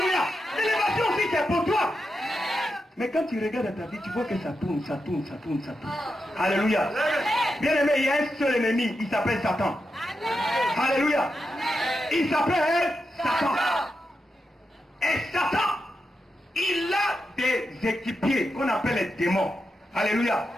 L'élévation aussi, c'est pour toi. Mais quand tu regardes ta vie, tu vois que ça tourne. Alléluia. Bien aimé, il y a un seul ennemi. Il s'appelle Satan. Alléluia. Il s'appelle Satan. Et Satan, il a des équipiers qu'on appelle les démons. Alléluia.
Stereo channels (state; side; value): normal; both; correlation 0.87